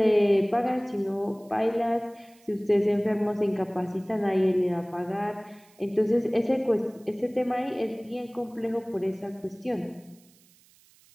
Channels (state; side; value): noise; right; hiss, 29 dB below the sound